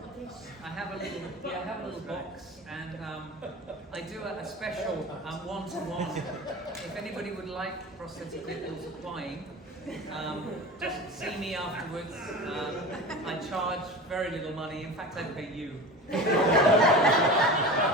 dish. I have a little box, and I do a special one-to-one. If anybody would like prosthetic nipples applying, just see me afterwards. I charge very little money. In fact, I pay you. If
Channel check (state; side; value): normal; both; correlation 0.32